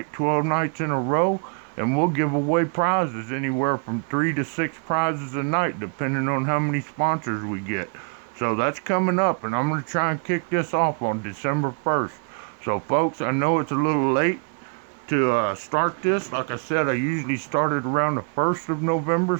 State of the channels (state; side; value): quieter; left; 39.9 dB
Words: 12 nights in a row, and we'll give away prizes, anywhere from 3 to 6 prizes a night, depending on how many sponsors we get. So that's coming up, and I'm going to try and kick this off on December 1st. So folks, I know it's a little late to start this. Like I said, I usually started around the 1st of November,